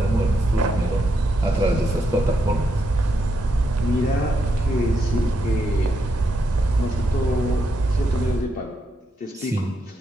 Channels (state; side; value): normal; both; correlation 0.81